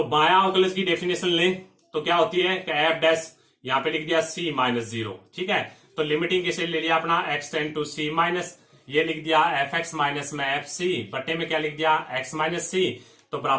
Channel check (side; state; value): both; identical; correlation 1.00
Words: बायां अवकलज की डेफिनेशन ले तो क्या होती है कि एफ डैश यहां पे लिख दिया सी माइनस 0। ठीक है, तो लिमिटिंग कैसे ले लिया अपना x tend to c minus, ये लिख दिया एफ एक्स माइनस में एफ सी बटे में क्या लिख दिया, एक्स माइनस सी, तो